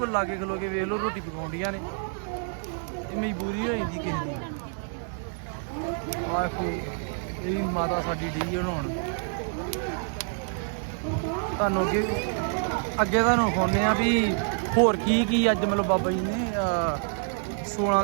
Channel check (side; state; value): left; silent; 60 dB below the other